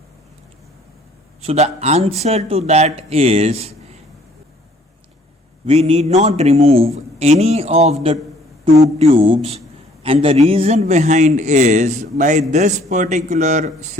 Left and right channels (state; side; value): normal; both; correlation 0.59